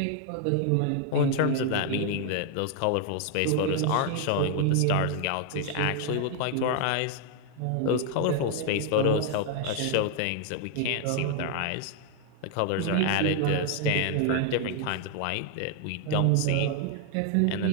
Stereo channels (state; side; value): different; both; correlation 0.00